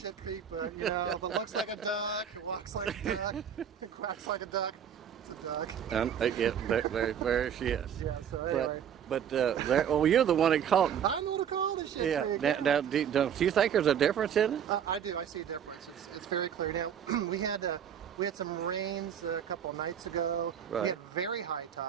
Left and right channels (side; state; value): left; quieter; 8.6 dB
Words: Creek, but you know, if it looks like a duck, it walks like a duck, it quacks like a duck, it's a duck. Yeah, there she is. Yeah, so anyway. Well, you're the one that called. I know to call it Shit Creek. Now, do you think there's a difference in it? I do. I see a difference. It's very clear. Now, we had some rains a couple of nights ago. Right. We had very high